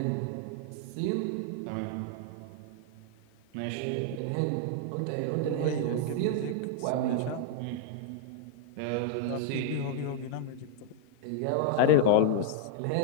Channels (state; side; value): different; both; correlation 0.00